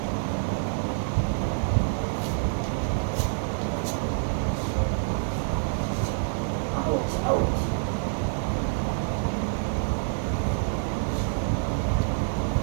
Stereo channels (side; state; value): left; silent; 60 dB below the other